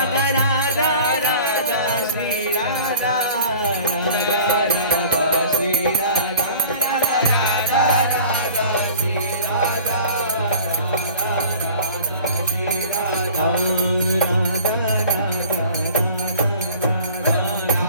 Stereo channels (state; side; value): inverted; both; correlation -0.44